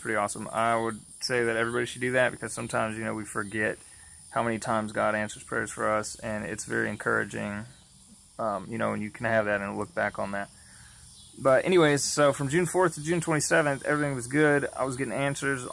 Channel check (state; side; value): identical; both; correlation 1.00